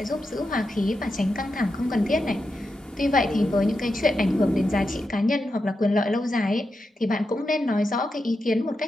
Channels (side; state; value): both; normal; correlation 0.88